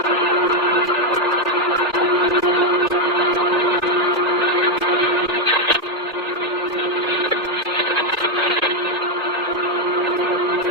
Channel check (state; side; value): normal; both; correlation 0.04